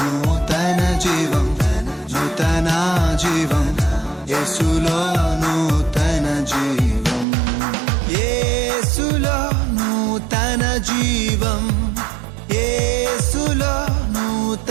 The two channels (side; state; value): left; drops out; at 7.2 s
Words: జీవం, నూతన జీవం, యేసులో నూతన జీవం, యేసులో నూతన జీవం, యేసులో